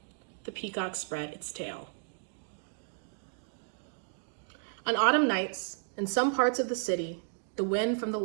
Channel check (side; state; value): left; silent; digital silence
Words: the peacock spread its tail. On autumn nights, in some parts of the city, the wind from the